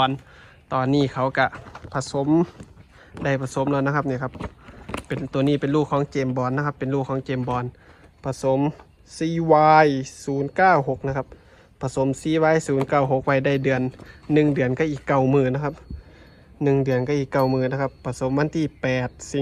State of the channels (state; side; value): identical; both; correlation 1.00